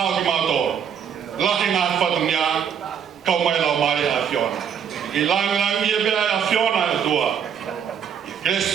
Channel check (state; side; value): quieter; left; 8.0 dB